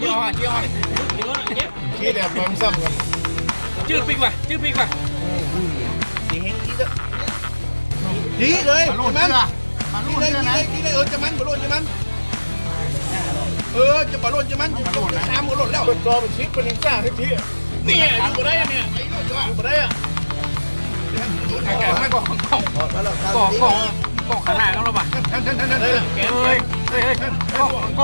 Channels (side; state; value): both; inverted; correlation -1.00